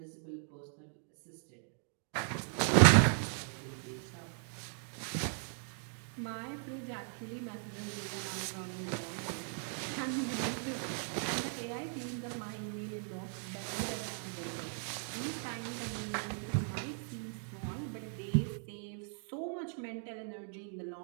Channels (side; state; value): left; silent; 53 dB below the other